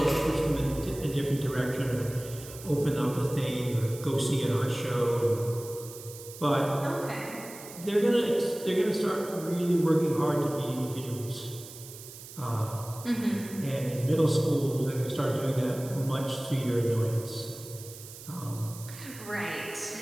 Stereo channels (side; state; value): right; noise; hiss, 15 dB below the sound